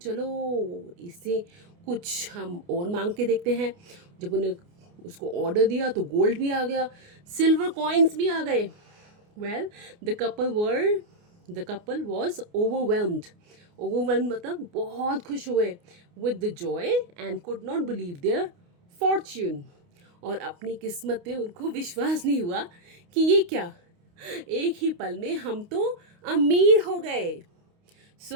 इससे कुछ हम और मांग के देखते हैं। जब उन्हें उसको ऑर्डर दिया तो गोल्ड भी आ गया, सिल्वर कॉइन्स भी आ गए। Well, the couple was overwhelmed. Overwhelmed मतलब बहुत खुश हुए with the joy and could not believe their fortune. और अपनी किस्मत पे उनको विश्वास नहीं हुआ कि ये क्या, एक ही पल में हम तो अमीर हो गए।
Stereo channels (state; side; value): late; left; 29 ms